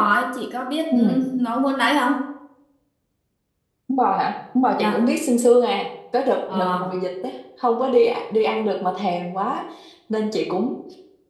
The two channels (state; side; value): identical; both; correlation 1.00